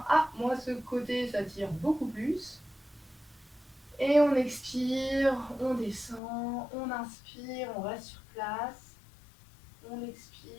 Ah, moi ce côté ça tire beaucoup plus. Et on expire, on descend, on inspire, on reste sur place. On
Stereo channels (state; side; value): drops out; right; at 6.2 s